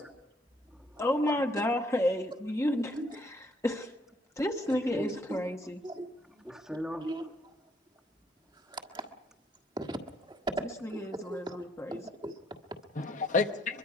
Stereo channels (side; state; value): both; normal; correlation 0.69